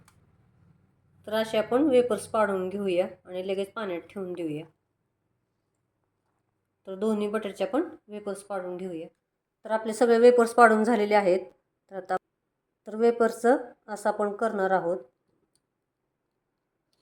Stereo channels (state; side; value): identical; both; correlation 1.00